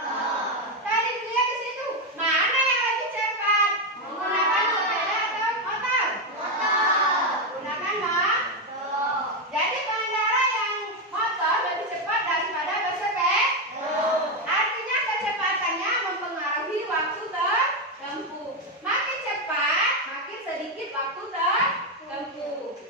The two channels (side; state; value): both; normal; correlation 0.07